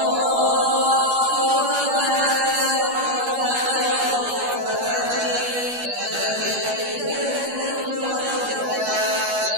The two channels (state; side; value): late; left; 12 ms